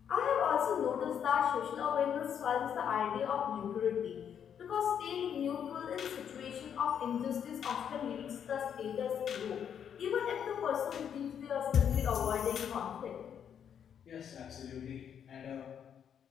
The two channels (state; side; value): quieter; right; 8.4 dB